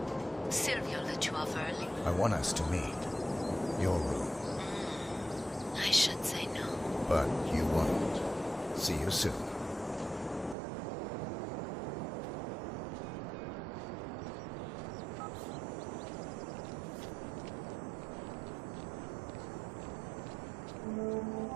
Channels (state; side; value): drops out; left; at 10.6 s